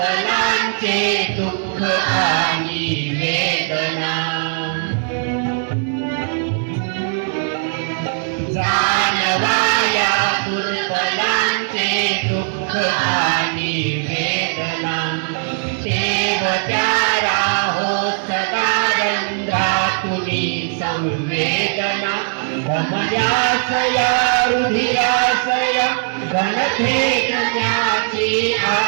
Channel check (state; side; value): silent; left; 67 dB below the other